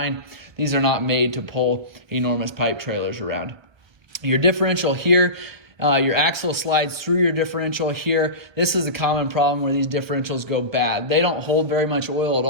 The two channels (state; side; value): late; left; 1.4 ms